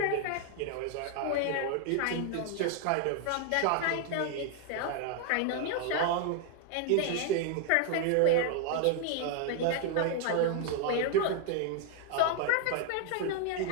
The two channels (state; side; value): different; both; correlation 0.00